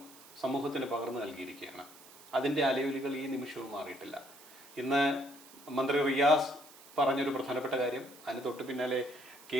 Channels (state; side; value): noise; right; hiss, 21 dB below the sound